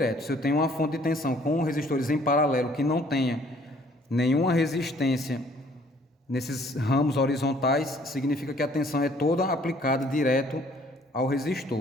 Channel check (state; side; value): normal; both; correlation 0.59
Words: Se eu tenho uma fonte de tensão com resistores em paralelo que não tenha nenhuma resistência nesses ramos horizontais, significa que a tensão é toda aplicada direto ao